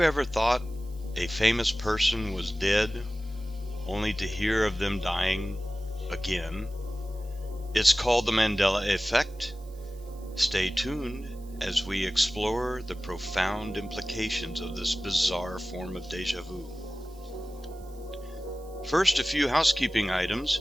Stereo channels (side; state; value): right; noise; hiss, 26 dB below the sound